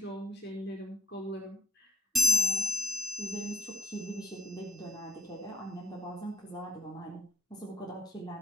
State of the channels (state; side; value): normal; both; correlation 0.67